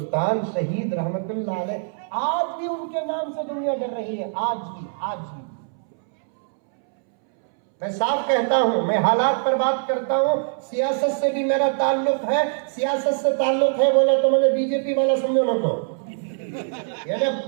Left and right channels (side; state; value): left; silent; 64 dB below the other